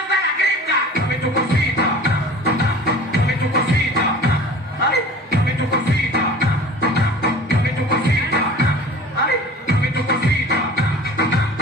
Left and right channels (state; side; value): normal; both; correlation 0.42